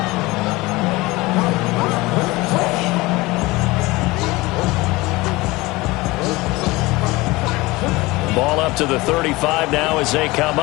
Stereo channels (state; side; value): quieter; right; 21.5 dB